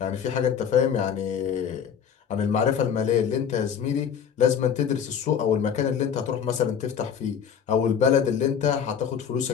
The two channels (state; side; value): quieter; right; 7.8 dB